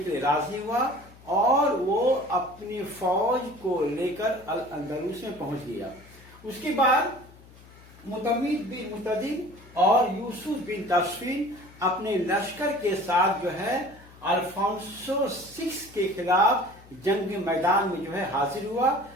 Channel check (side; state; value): left; noise; hum, 23 dB below the sound